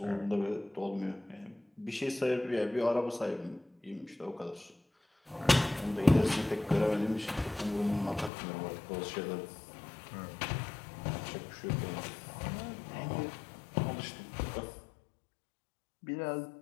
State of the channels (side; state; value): right; drops out; at 8.3 s